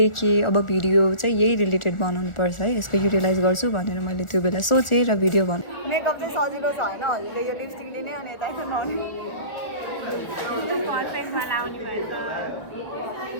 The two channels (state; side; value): late; right; 1.4 ms